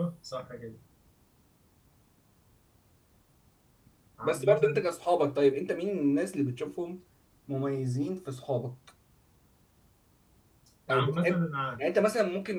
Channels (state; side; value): identical; both; correlation 1.00